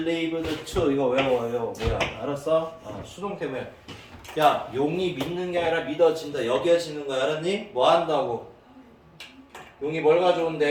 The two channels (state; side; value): identical; both; correlation 1.00